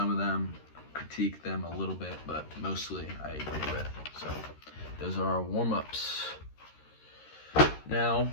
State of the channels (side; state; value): right; late; 13 ms